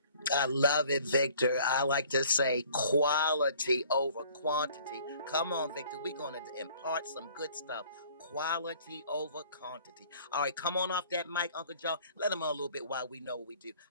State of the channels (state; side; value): inverted; both; correlation -0.54